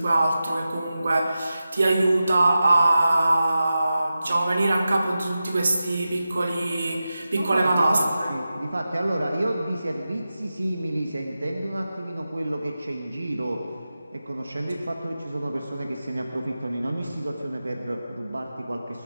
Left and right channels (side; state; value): both; inverted; correlation -0.93